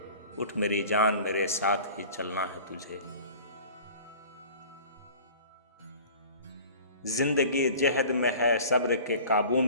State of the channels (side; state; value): both; inverted; correlation -0.43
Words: उठ मेरी जान मेरे साथ ही चलना है तुझे। जिंदगी जहद में है सब्र के काबू